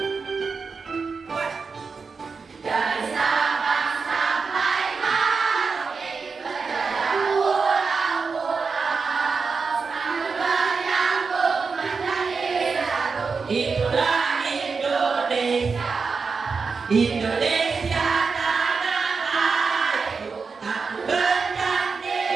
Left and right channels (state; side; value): quieter; left; 4.9 dB